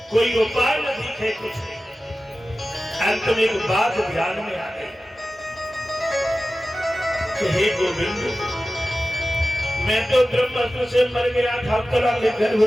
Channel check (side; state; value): both; normal; correlation 0.95